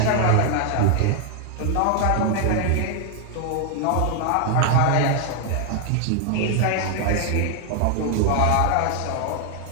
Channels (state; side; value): different; both; correlation 0.00